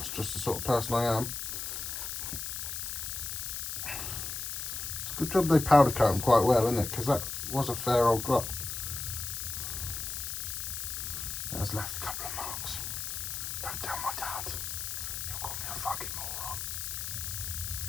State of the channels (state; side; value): noise; left; hiss, 4 dB below the sound